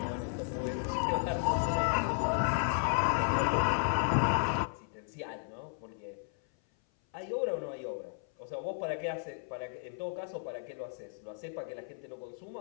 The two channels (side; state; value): right; silent; 55 dB below the other